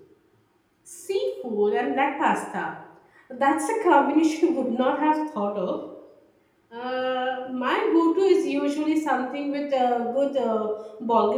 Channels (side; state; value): both; identical; correlation 1.00